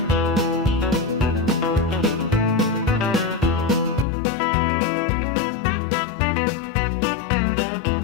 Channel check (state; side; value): drops out; right; at 4.0 s